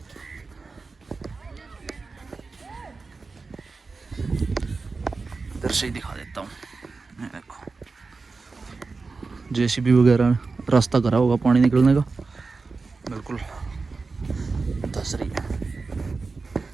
इधर से ही दिखा देता हूँ। ये देखो जेसीबी वगैरह रास्ता करा होगा पानी निकलने का, बिल्कुल धस रही है।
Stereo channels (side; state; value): left; quieter; 4.2 dB